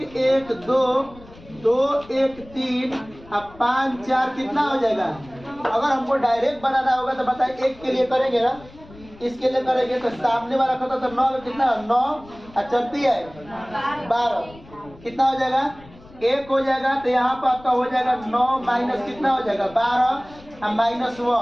1 2 2 1 3 अब 5 4 कितना हो जाएगा। अगर हमको डायरेक्ट बनाना होगा तो बताइए, एक के लिए करेंगे ना, इसके लिए करेंगे तो सामने वाला खाता तो 9 में कितना 9 चलती है 12 कितना हो जाएगा 1 हो जाएगा। तो यहाँ पर आपका हो जाएगा 9 माइनस कितना हो जाएगा 12 और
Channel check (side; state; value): left; noise; rumble, 22 dB below the sound